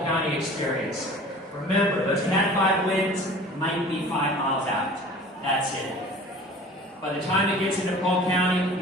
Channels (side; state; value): both; normal; correlation 0.44